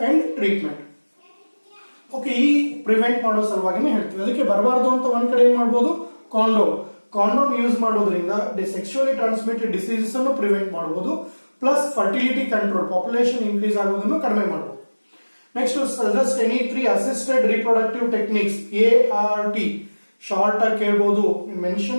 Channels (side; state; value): both; inverted; correlation -1.00